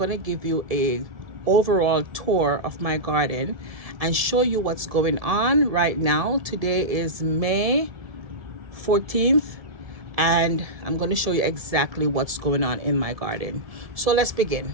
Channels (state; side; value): late; left; 1.7 ms